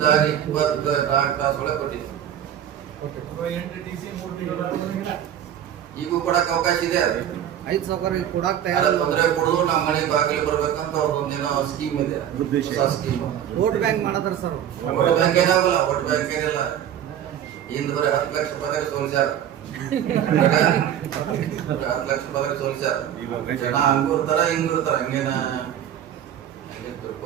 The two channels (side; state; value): left; quieter; 10.2 dB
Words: 24 ತಾಸು ಒಳಗೆ ಕೊಟ್ಟಿದ್ವಿ. ಈಗೂ ಕೊಡಕ್ ಅವಕಾಶ ಇದೆ. ಅದು 5 ಸಾವಿರ ಕೊಡಾಕ್ ಯಾರ ತೊಂದರೆ ಕೊಡೋದು ನಮ್ಮ ಮನೆ ಬಾಗಿಲು ಬರ್ಬೇಕಂತ ಅವ್ರದ್ದೊಂದೇನೋ ಸ್ಕೀಮ್ ಇದೆ, ಹೊಸ ಸ್ಕೀಮ್. ವೋಟ್ ಬ್ಯಾಂಕ್ ಮಾಡತಾರ ಸರ್. ವೋಟ್ ಬ್ಯಾಂಕ್ ಏನಾಗಲ್ಲ, ವೋಟ್ ಬ್ಯಾಂಕ್ ಏನಿಲ್ಲ. ಹಿಂದ್ ಬರೀ 10 ಲಕ್ಷ ರೂಪಾಯಿ ಸೋಲಿಸ್ಯಾರ, 10 ಲಕ್ಷ ರೂಪಾಯಿ ಸೋಲಿಸ್ಯಾರ. ಜನ ಹಂಗೂ ಇರ್ತಾರ ಹಿಂಗೂ ಇರ್ತಾರ, ಹಂಗೇನ